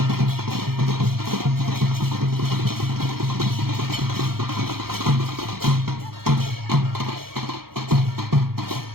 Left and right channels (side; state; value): left; late; 0.94 ms